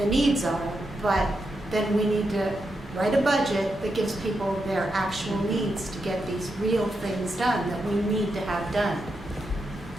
needs are, but then we need to write a budget that gives people their actual needs to get these real things done that we need to have done.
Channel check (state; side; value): normal; both; correlation 0.85